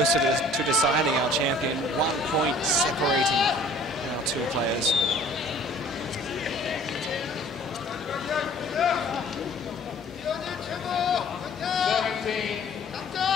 to deciding our champion. 1 point separating our two players.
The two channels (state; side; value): normal; both; correlation 0.52